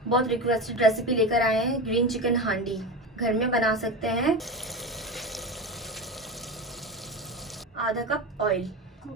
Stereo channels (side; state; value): both; normal; correlation 0.23